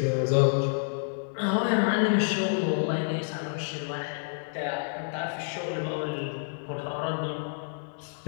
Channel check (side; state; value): right; silent; 56 dB below the other